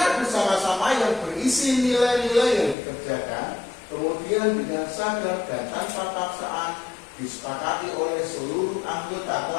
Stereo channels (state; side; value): drops out; right; at 2.8 s